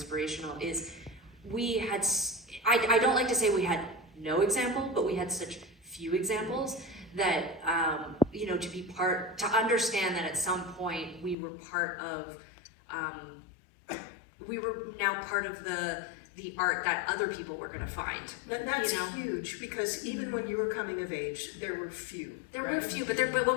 is we had, I don't like to say we had no example, but we had such few examples that, you know, to understand that at some point we were part of, we were now part of the art that other people were going to find. That's you know? huge, because even when you were coming of age, there were few. There were a few, but when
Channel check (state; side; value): drops out; right; at 11.4 s